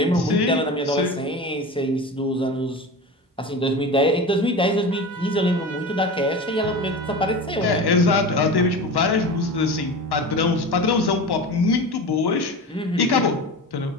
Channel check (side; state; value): both; normal; correlation 0.30